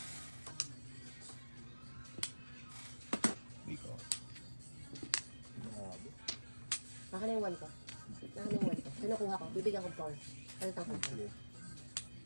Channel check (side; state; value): both; inverted; correlation -1.00